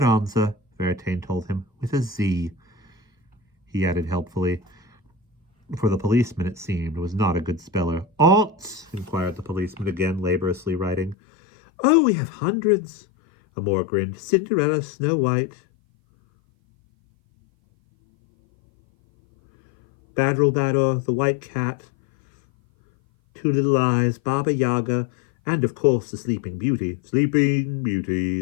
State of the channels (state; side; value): drops out; right; at 11.2 s